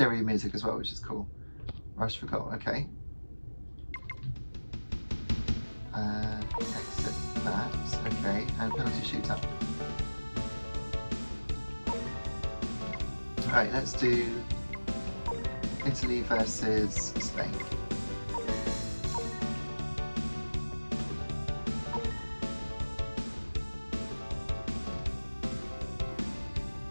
music as well, which is cool. Rush for goal, okay. Exit that, okay. And penalty shootout. Alright, let's do Italy versus Spain.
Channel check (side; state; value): both; inverted; correlation -1.00